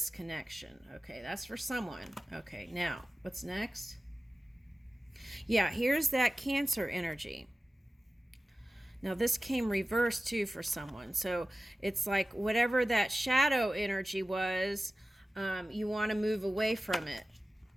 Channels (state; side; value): normal; both; correlation 0.95